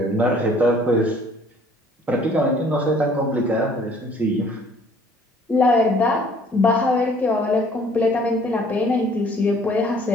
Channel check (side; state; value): both; normal; correlation 0.57